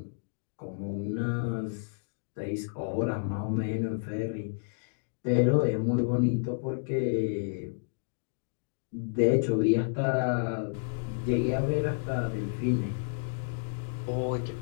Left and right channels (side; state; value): right; silent; digital silence